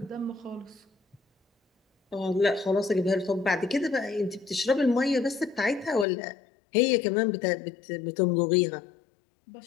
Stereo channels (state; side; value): drops out; right; at 6.1 s